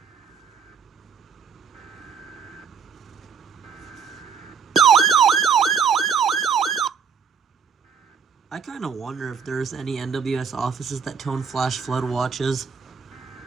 I kind of wonder if there's any NWS offices that tone flash flood watches.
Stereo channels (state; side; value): quieter; left; 6.3 dB